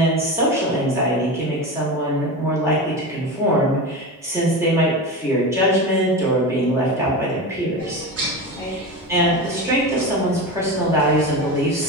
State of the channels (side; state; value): both; normal; correlation 0.24